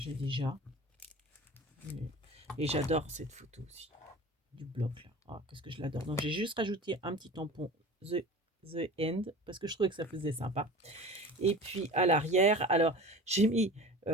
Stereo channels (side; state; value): both; normal; correlation 0.37